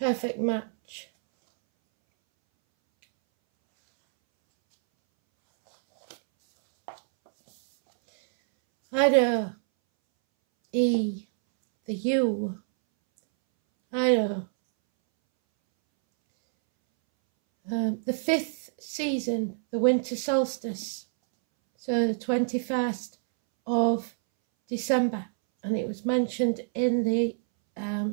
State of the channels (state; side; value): silent; left; 61 dB below the other